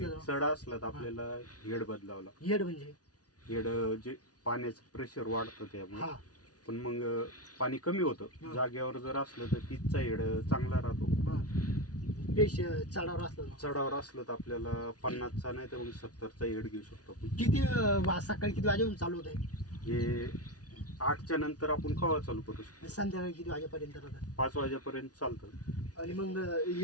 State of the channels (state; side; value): late; right; 0.68 ms